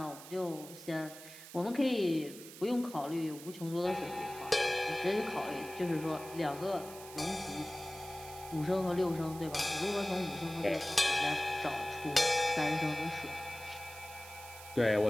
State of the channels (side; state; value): right; noise; hiss, 15 dB below the sound